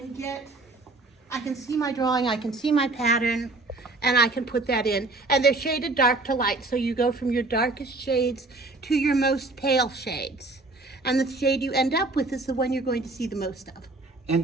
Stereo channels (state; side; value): quieter; left; 3.2 dB